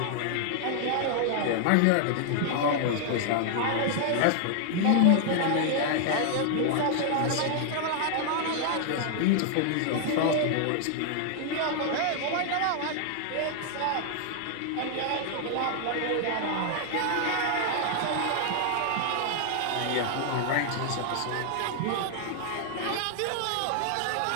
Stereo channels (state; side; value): different; both; correlation 0.00